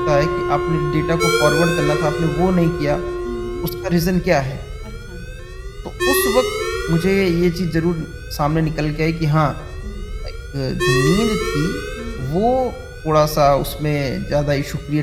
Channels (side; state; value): both; identical; correlation 1.00